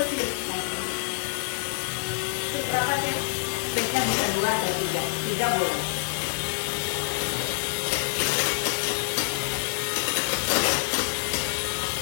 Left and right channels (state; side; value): silent; right; 60 dB below the other